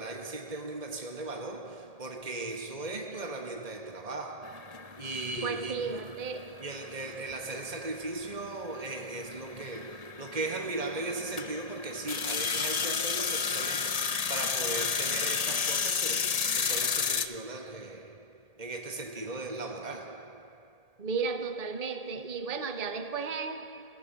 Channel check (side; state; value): left; late; 1.8 ms